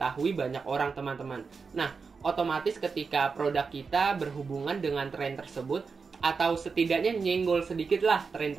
banyak orang teman-teman. Nah, otomatis ketika produk kita berhubungan dengan tren tersebut, atau setidaknya nyenggol sedikit lah tren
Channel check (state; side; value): quieter; left; 5.0 dB